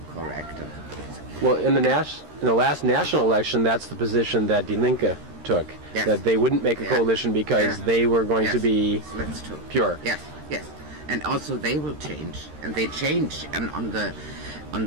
correct." Well, in the last national election, that's the position that Die Linke took, that they wouldn't make a coalition because they were going to be pure. Yes. And also they will change, and they change on the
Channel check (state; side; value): late; left; 13 ms